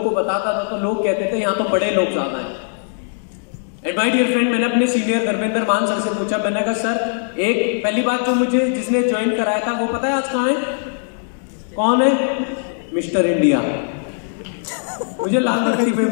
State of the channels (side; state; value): right; silent; digital silence